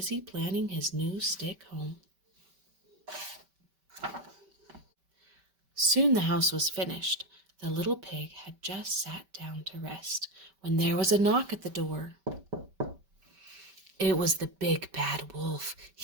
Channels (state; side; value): late; left; 5.2 ms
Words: planning his new stick home. Soon the house was finished. The little pig had just sat down to rest when there was a knock at the door. It was the big bad wolf.